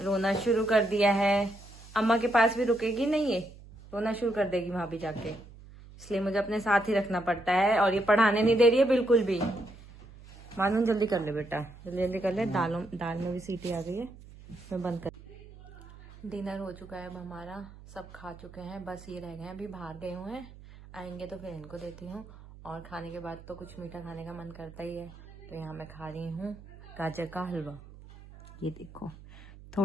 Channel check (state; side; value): noise; right; hum, 19 dB below the sound